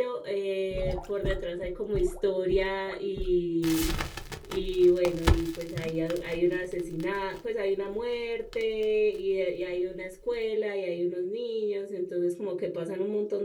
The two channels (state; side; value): identical; both; correlation 1.00